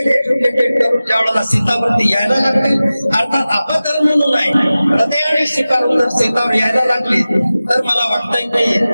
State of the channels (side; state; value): both; inverted; correlation -0.96